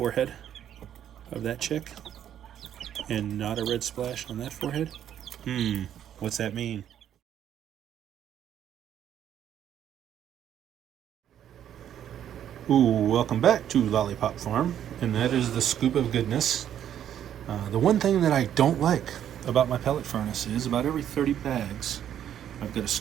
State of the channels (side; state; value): left; quieter; 10.2 dB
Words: of that chick. And not a red splash on that forehead. What's that mean? Ooh, welcome back to Lollipop Farm, and that is the scoop of goodness. The one thing that I don't like about my pellet furnace is about every 30 bags, I've got to